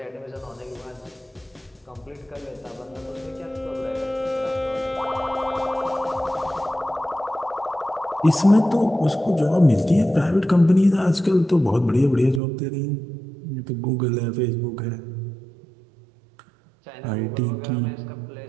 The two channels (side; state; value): left; drops out; at 12.4 s